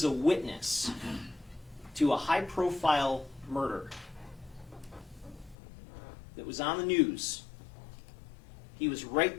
a witness to a high-profile murder that was on the news. He was right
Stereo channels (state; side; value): drops out; right; at 5.6 s